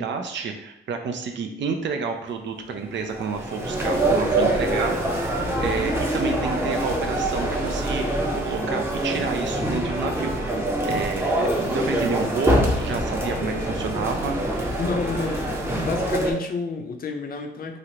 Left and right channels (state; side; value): normal; both; correlation 0.52